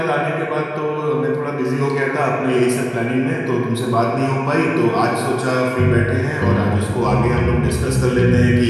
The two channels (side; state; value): both; identical; correlation 1.00